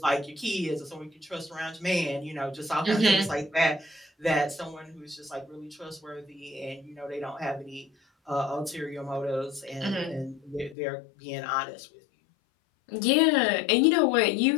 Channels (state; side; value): drops out; right; at 10.8 s